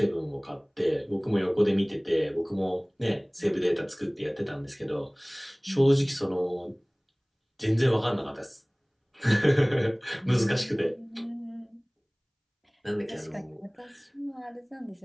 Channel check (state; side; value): identical; both; correlation 1.00